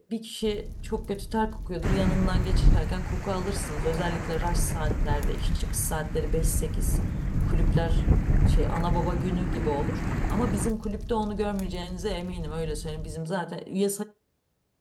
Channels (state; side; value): identical; both; correlation 1.00